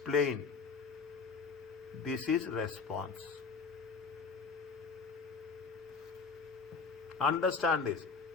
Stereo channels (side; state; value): right; quieter; 5.0 dB